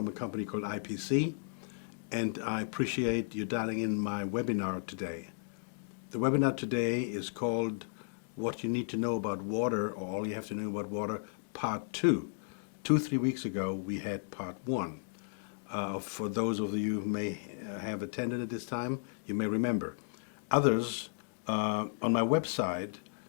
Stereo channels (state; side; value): silent; right; digital silence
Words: a company called IPC, and I appreciate you dialing in my webinar today. The webinar today is called What You Need to Know About Water, or All You Have to Know About Water, Part 2. 3 weeks ago, we had Part 1. For those of you who may have attended at this time, you may remember. Others, on my website,